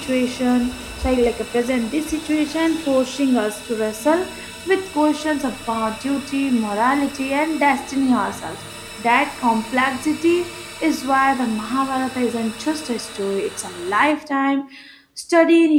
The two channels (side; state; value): both; identical; correlation 1.00